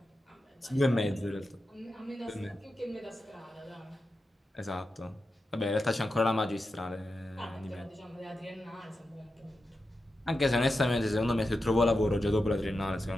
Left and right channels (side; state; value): both; normal; correlation 0.90